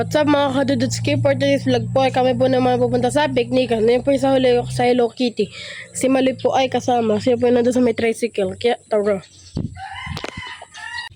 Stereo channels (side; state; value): both; identical; correlation 1.00